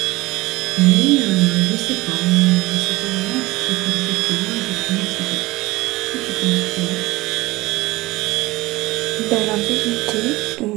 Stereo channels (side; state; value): left; quieter; 20.0 dB